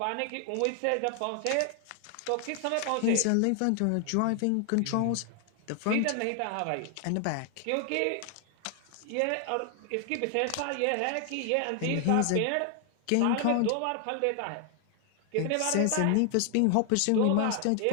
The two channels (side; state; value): both; different; correlation 0.00